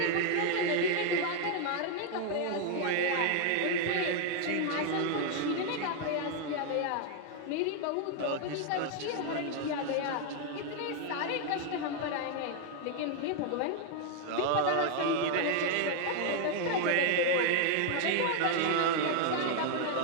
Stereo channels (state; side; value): different; both; correlation 0.00